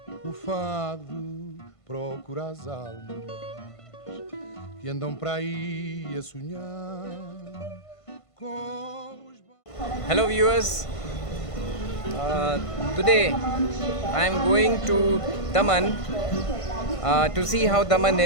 o fado procura as almas que andam para aí a sonhar com os... Hello viewers, today I am going to Daman to see how Daman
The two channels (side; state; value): right; late; 1.5 ms